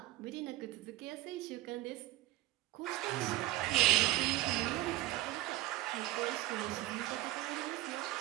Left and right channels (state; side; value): quieter; left; 15.9 dB